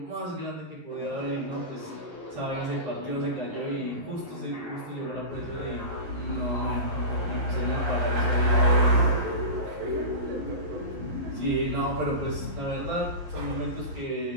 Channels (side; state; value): left; late; 11 ms